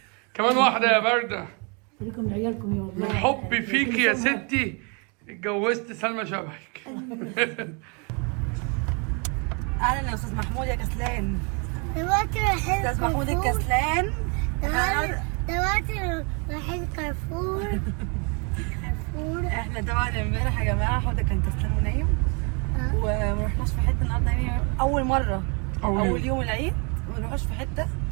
كمان واحده يا برده. خليكم لعيالكم يا والله. من حبي فيكي يا ستي اتجوزت سلمى شبهك. اهلا يا استاذ محمود يا كسلان. دلوقتي رايحين استاذ محمود الكسلان. دلوقتي رايحين كارفور. احنا طبعا امبارح يا جماعه حوده كان كسلان ونايم وما رحناش في حته النهارده، يعني اول مره اول يوم العيد ما نروحش في حته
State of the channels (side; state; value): left; quieter; 34.3 dB